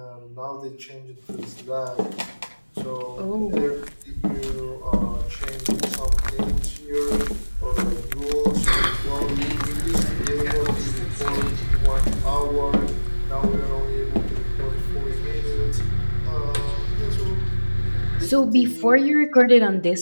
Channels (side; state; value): both; inverted; correlation -1.00